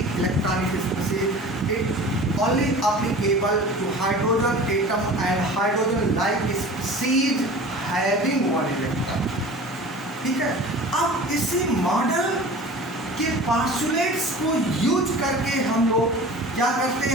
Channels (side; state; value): both; normal; correlation 0.40